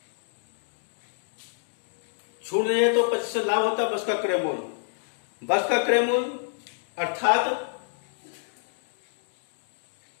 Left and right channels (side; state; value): right; silent; digital silence